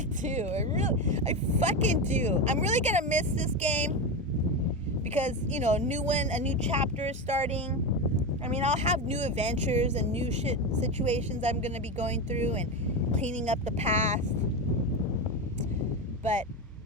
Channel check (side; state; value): both; normal; correlation 0.16